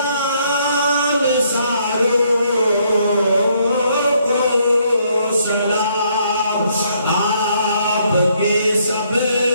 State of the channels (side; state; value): both; inverted; correlation -0.70